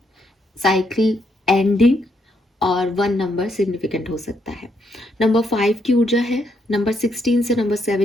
साइकिल एंडिंग और 1 नंबर सिग्निफिकेंट हो सकता है। नंबर 5 की ऊर्जा है, नंबर 16 से नंबर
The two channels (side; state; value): both; normal; correlation 0.77